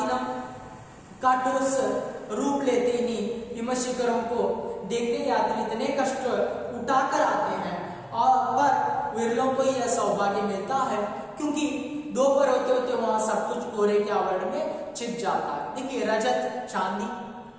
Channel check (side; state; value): both; identical; correlation 1.00